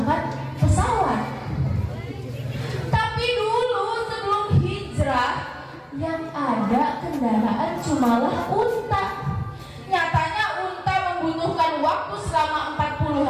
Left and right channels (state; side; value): identical; both; correlation 1.00